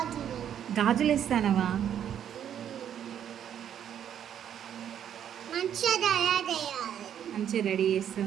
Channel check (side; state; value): left; quieter; 9.5 dB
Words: గాజులు ఇస్తానవా? మంచిగా రెడీ